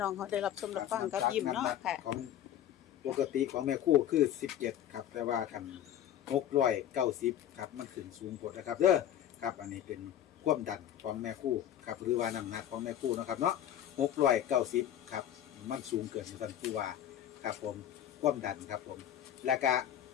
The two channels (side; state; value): right; quieter; 10.9 dB